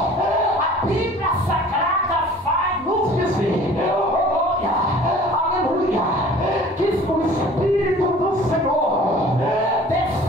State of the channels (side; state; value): both; normal; correlation 0.48